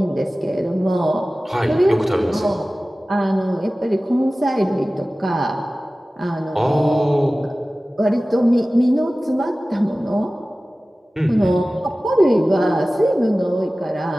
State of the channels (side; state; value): both; normal; correlation 0.97